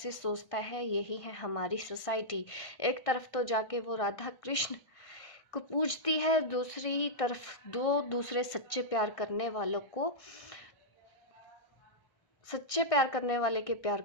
सोचता है, यही है हमारी सोसाइटी। एक तरफ तो जाके वो राधा कृष्ण को पूजती है, दूसरी तरफ दो दूसरे सच्चे प्यार करने वाले के प्यार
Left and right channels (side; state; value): right; late; 1.6 ms